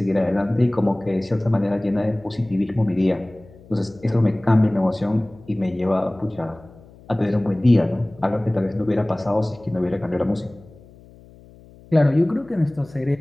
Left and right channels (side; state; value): left; noise; hum, 23 dB below the sound